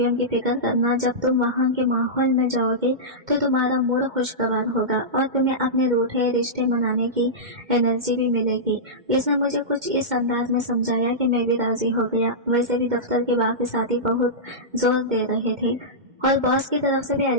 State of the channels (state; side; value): late; left; 2.1 ms